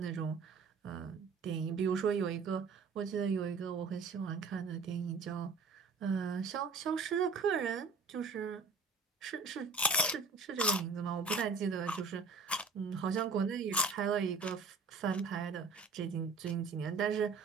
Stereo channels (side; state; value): left; quieter; 4.3 dB